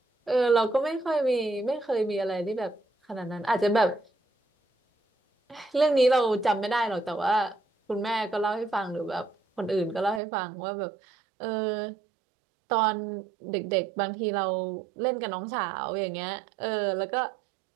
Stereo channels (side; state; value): left; drops out; at 10.2 s